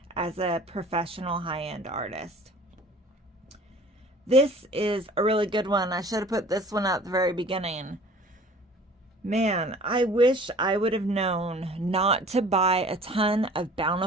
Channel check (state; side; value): normal; both; correlation 0.47